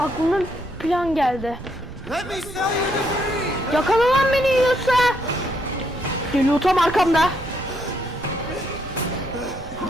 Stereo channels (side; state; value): right; noise; rumble, 15 dB below the sound